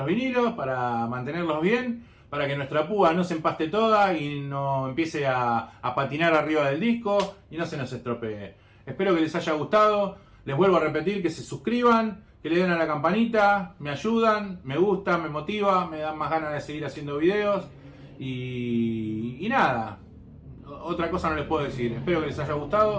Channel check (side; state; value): both; identical; correlation 1.00